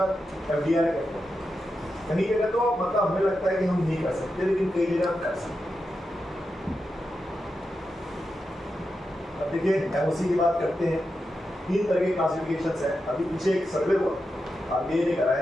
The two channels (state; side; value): normal; both; correlation 0.88